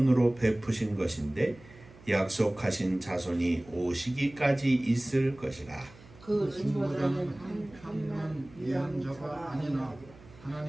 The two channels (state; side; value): noise; right; hum, 22 dB below the sound